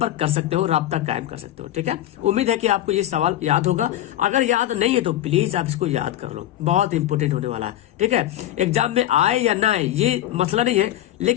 कर सकते हो, राब्ता कायम कर सकते हो। ठीक है, उम्मीद है कि आपको ये सवाल याद होगा। अगर याद नहीं है तो प्लीज आप इसको याद कर लो, बहुत इंपॉर्टेंट होने वाला है। ठीक है, एग्जाम में आए या ना आए ये मसला नहीं है,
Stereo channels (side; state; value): right; quieter; 13.3 dB